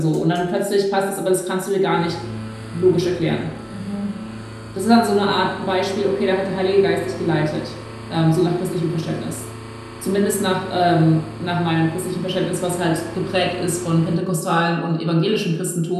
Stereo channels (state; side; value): identical; both; correlation 1.00